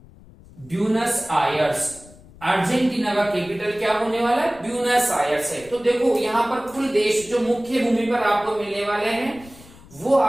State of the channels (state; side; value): noise; left; rumble, 22 dB below the sound